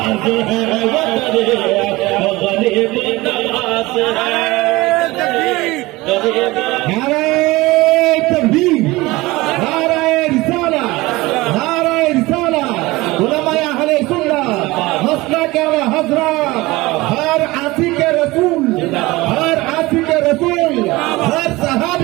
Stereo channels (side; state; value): left; quieter; 20.7 dB